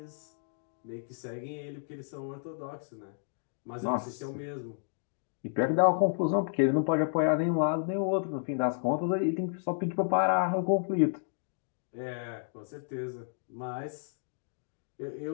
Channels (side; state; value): right; silent; digital silence